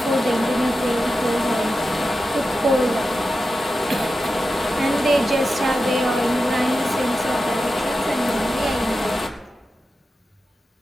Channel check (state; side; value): normal; both; correlation 0.91